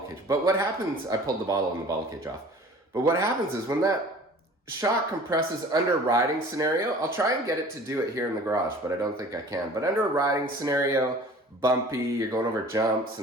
cage. But what happens, I pulled the bottle and the bottle cage off. But what happens is when that shock compresses under a riding scenario, I'll try and get it to do it here in the garage, but I don't think I can. But under a riding scenario, bumpy, you're going over jumps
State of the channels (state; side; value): normal; both; correlation 0.46